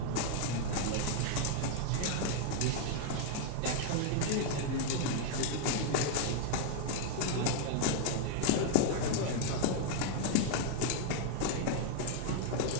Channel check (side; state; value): both; different; correlation 0.00